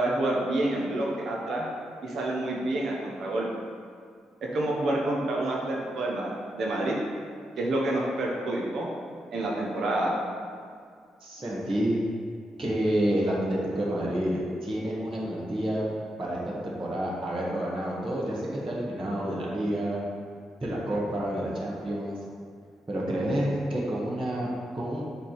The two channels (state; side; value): normal; both; correlation 0.84